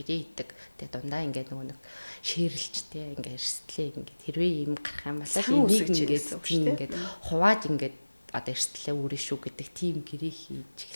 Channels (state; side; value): inverted; both; correlation -1.00